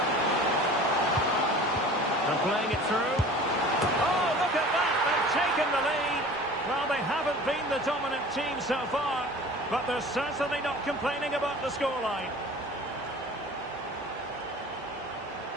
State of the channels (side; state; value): both; normal; correlation 0.42